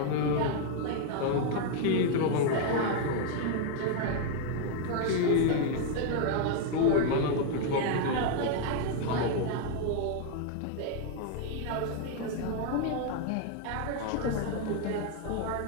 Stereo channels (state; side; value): different; both; correlation 0.00